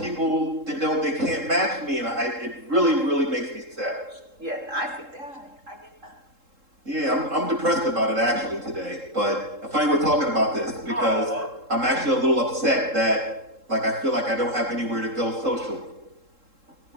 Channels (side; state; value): left; late; 3.7 ms